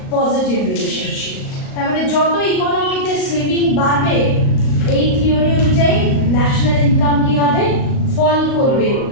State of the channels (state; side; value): late; right; 38 ms